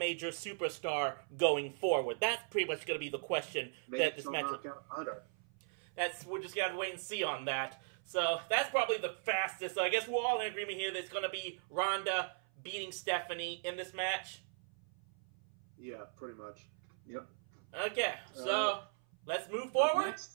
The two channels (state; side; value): silent; left; 52 dB below the other